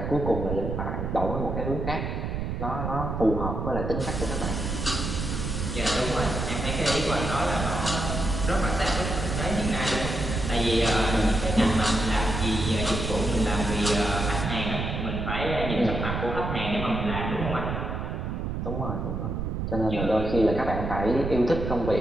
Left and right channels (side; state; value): right; noise; rumble, 3 dB below the sound